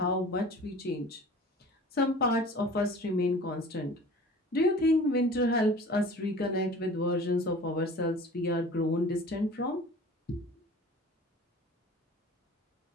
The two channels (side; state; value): both; normal; correlation 0.43